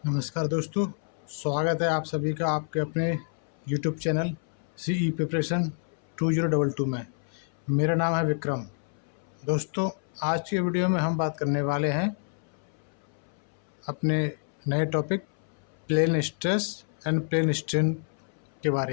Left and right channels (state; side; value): silent; right; 59 dB below the other